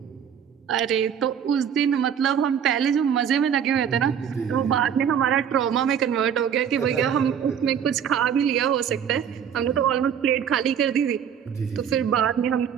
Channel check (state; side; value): quieter; left; 8.2 dB